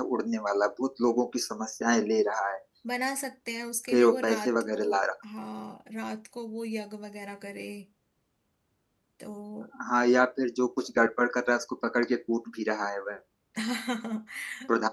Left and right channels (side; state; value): both; identical; correlation 1.00